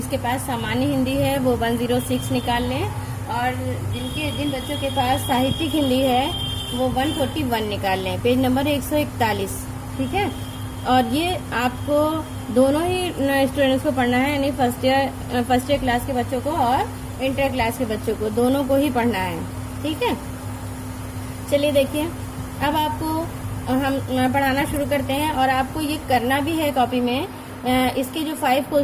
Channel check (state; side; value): identical; both; correlation 1.00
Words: पास सामान्य हिंदी है वो 106 निकाल लें, और जिन बच्चों के पास साहित्यिक हिंदी है वो 141 निकाल लें। पेज नंबर 141, ठीक है। और ये आपको दोनों ही स्टूडेंट्स को पढ़ना है, यानी फर्स्ट ईयर क्लास के बच्चों को और इंटर क्लास के बच्चों को, दोनों को ही पढ़ना है, ठीक है। चलिए देखिए, अब आपको हम पढ़ाना शुरू करते हैं, और आपको ये करना भी है कॉपी में। इसके जो 5